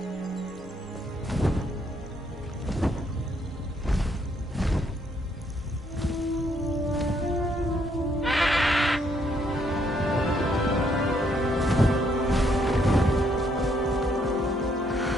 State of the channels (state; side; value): normal; both; correlation 0.71